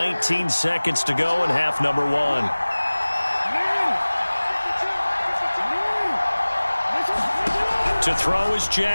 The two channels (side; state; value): both; inverted; correlation -1.00